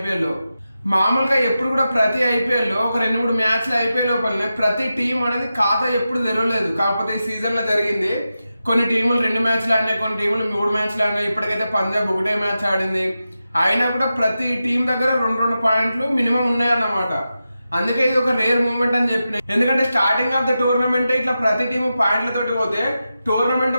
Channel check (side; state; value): both; inverted; correlation -0.91